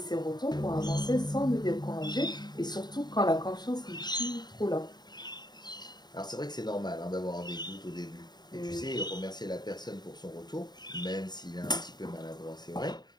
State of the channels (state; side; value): late; right; 0.20 ms